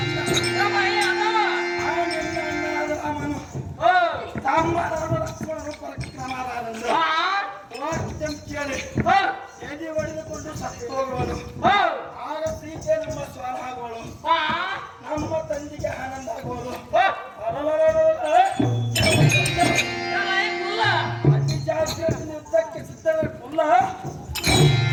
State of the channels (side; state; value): both; identical; correlation 1.00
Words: ರಾಮನು ತಮ್ಮರಾದ ಲಕ್ಷ್ಮಣನು ಪರಕ್ರಮರಾದಂದು ವಾಕ್ಯಂ ಕೇಳಿ ಎದೆ ಹೊಡೆದುಕೊಂಡು ಸತ್ತು ಹೋಗುವನು ಆಗ ಸೀತೆ ನಮ್ಮ ಸ್ವರ ಆಗುವಳು ನಮ್ಮ ತಂದೆಗೆ ಆನಂದ ಆಗುವುದು ಅತಿ ಜಾಸ್ತಿ ಯುದ್ಧಕ್ಕೆ ಸಿದ್ಧವೇ ಕುಲ್ಲ